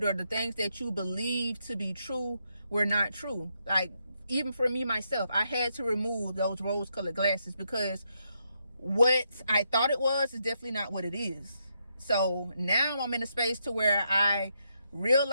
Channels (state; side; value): inverted; both; correlation -0.80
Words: or the things that you believe to be true were not true. Like, even for me myself, I had to remove those rose-colored glasses, because what I thought it was is definitely not what it is. So now I'm in a space to where I